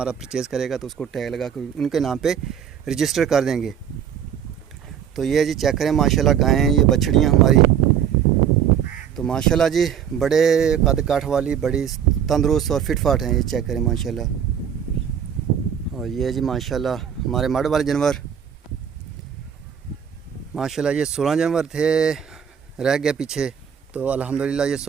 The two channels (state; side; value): quieter; left; 8.6 dB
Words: परचेज़ करेगा तो उसको टैग लगा कर उनके नाम पे रजिस्टर कर देंगे। तो ये जी चेक करें माशाल्लाह गायें, ये बछड़ियाँ हमारी, तो माशाल्लाह जी बड़े कद काठ वाली, बड़ी तंदुरुस्त और फिट फाट हैं, ये चेक करें माशाल्लाह। और ये जी माशाल्लाह हमारे मड वाले जानवर माशाल्लाह, ये 16 जानवर थे, रह गए पीछे। तो अल्हम्दुलिल्लाह ये